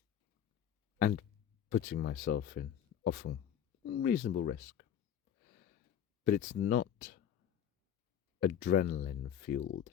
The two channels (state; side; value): quieter; right; 9.5 dB